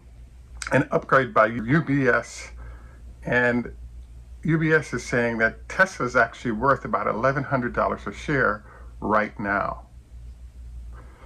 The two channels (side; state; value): both; identical; correlation 1.00